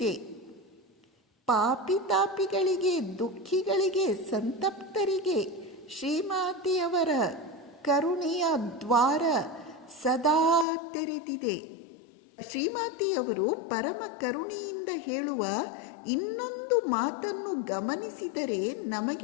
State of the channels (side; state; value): right; drops out; at 10.7 s